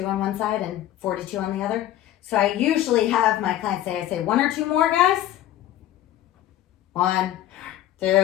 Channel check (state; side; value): quieter; right; 13.1 dB